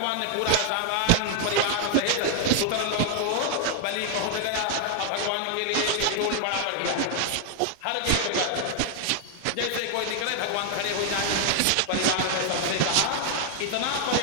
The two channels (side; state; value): both; different; correlation 0.00